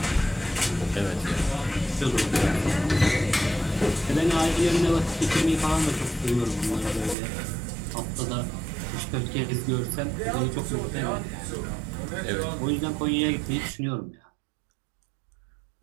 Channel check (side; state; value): left; drops out; at 7.2 s